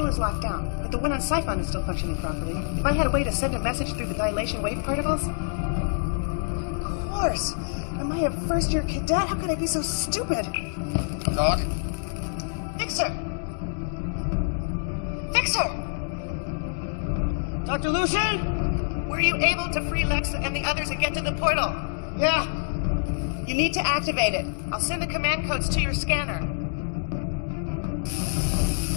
is locked down, but the one on Siphon is still functioning properly. If I had a way to send a message through the dilation wave particles... Of course! Am I a first-year cadet? How could I be so stupid? Doc? Fixer! Fixer! Dr. Lucian? Were you able to free Lex and the others and get to the portal? Yeah. You need to activate it. I'll send the command codes to your scanner.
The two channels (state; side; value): silent; right; digital silence